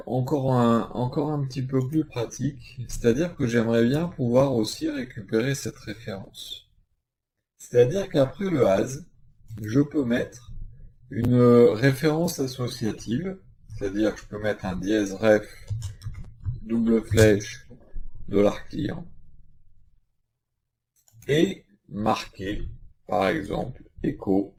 encore un petit peu plus pratique, c'est-à-dire que j'aimerais bien pouvoir aussi récupérer cette référence. C'est-à-dire qu'après le as, je peux mettre une référence associative, c'est-à-dire que je peux mettre un dièse ref double flèche $client et marquer par exemple écho,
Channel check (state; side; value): identical; both; correlation 1.00